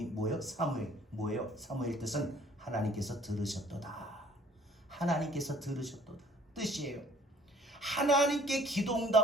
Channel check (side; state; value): both; normal; correlation 0.56